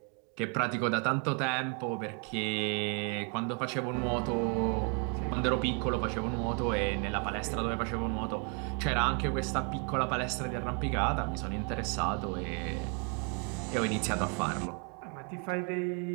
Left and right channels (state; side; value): quieter; left; 37.6 dB